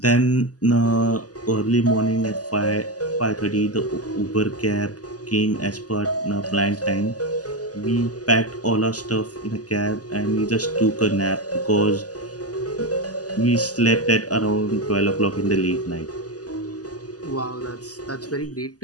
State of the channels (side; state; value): right; late; 0.67 ms